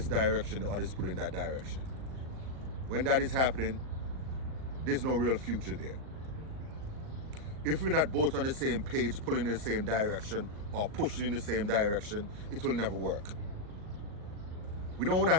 direction, the other is pulling that direction. When that is happening, there's no real future there. If we're not both on the same page, pulling in the same direction, or pushing in the same direction, it will never work. We don't want to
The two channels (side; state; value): left; late; 38 ms